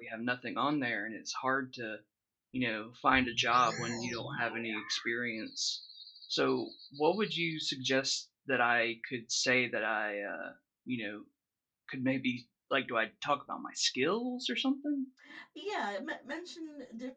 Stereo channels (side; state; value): both; identical; correlation 1.00